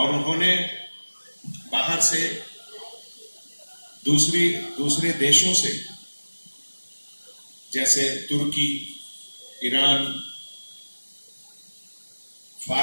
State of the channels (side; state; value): both; inverted; correlation -1.00